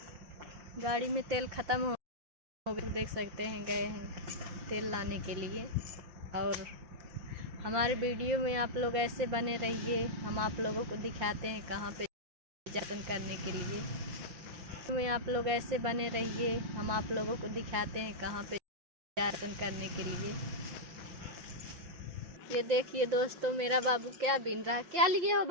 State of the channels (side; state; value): left; late; 5.8 ms